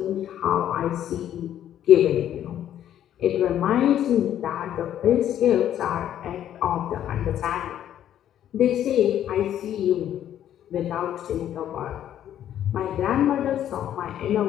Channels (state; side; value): quieter; right; 10.9 dB